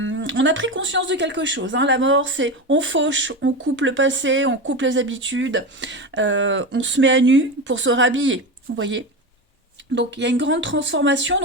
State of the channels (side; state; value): both; normal; correlation 0.20